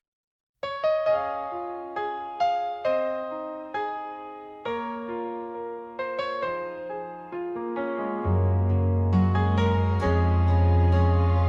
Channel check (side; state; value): both; identical; correlation 1.00